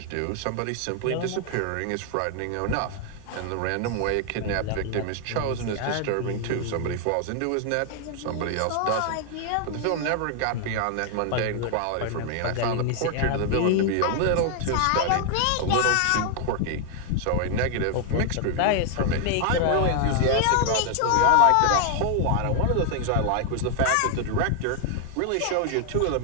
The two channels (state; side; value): different; both; correlation 0.00